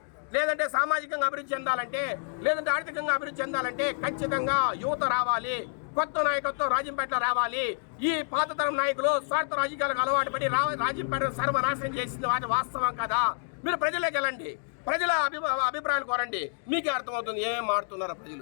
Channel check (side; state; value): right; silent; digital silence